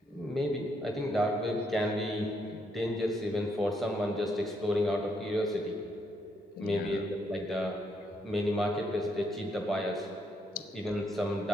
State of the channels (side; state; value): both; normal; correlation 0.75